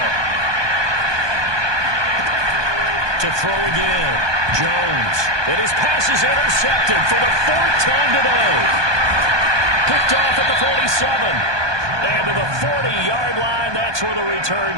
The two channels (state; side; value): late; left; 1.2 ms